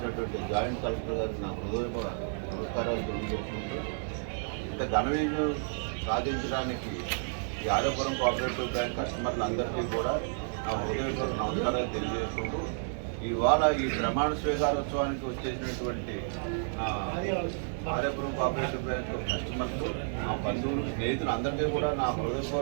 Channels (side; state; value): left; silent; 55 dB below the other